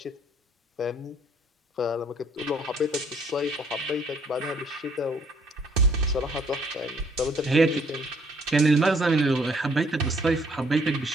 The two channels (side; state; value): both; normal; correlation 0.63